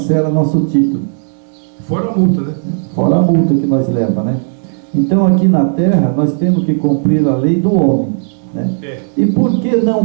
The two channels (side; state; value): left; silent; digital silence